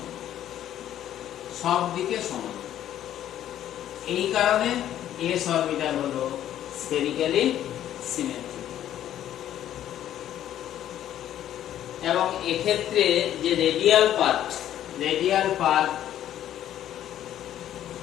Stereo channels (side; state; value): right; quieter; 11.5 dB